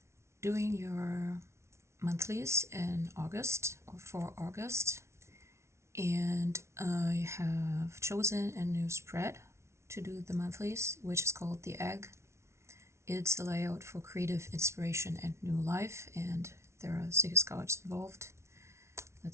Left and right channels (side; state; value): left; late; 0.13 ms